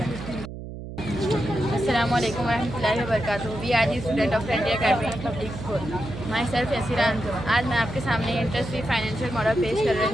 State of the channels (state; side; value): noise; right; hum, 10 dB below the sound